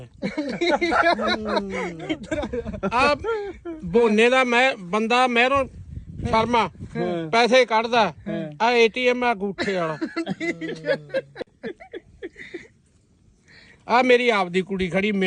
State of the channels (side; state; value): both; identical; correlation 1.00